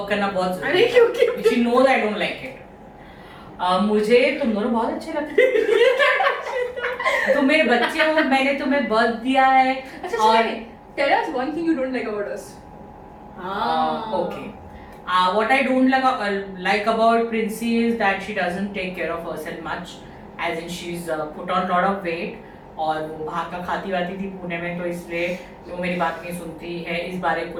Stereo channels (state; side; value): identical; both; correlation 1.00